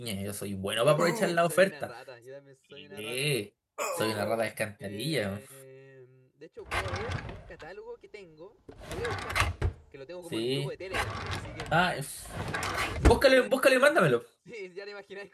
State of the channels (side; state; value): both; identical; correlation 1.00